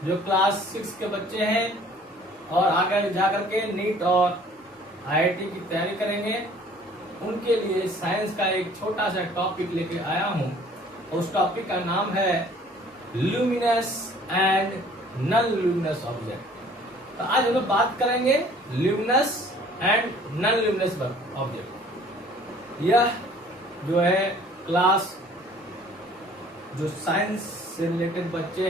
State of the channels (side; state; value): both; normal; correlation 0.54